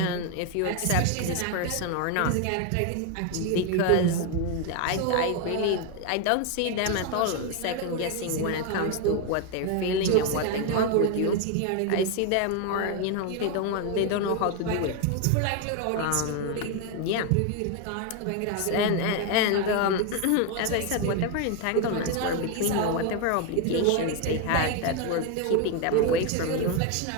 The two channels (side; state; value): both; different; correlation 0.01